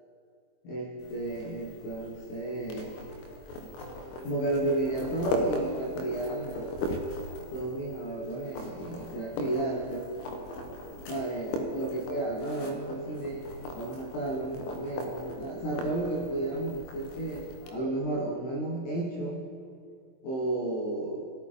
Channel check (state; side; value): late; right; 23 ms